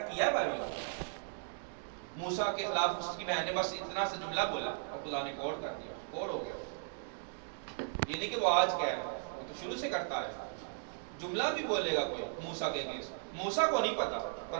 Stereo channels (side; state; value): left; silent; digital silence